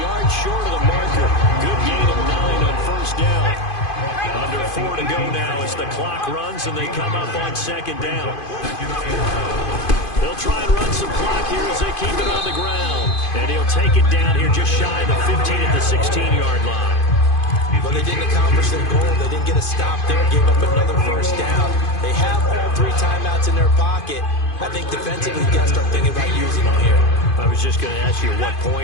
yard short of the marker. Good gain of 9 on 1st down. Under 4 to go now as the clock runs and they come up on second down. They'll try and run some clock here as they keep it on the ground. And he'll take it down here just shy of the 15 at the 16-yard line. But they didn't accomplish their goal. They didn't get a stop there, gave up another first down. They have all 3 timeouts in their pocket. I think defensively you got to start thinking about using them here. I was just going to ask you at what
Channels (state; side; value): late; right; 2.5 ms